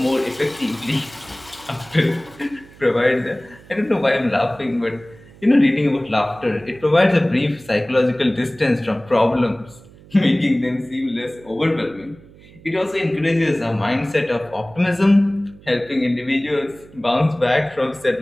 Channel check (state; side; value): noise; right; hum, 23 dB below the sound